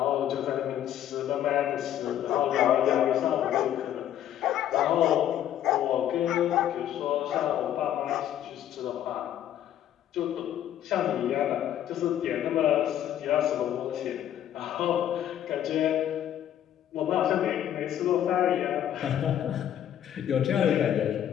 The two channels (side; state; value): right; quieter; 11.0 dB